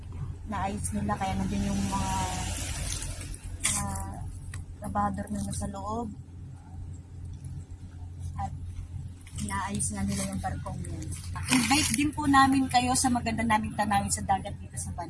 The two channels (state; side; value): identical; both; correlation 1.00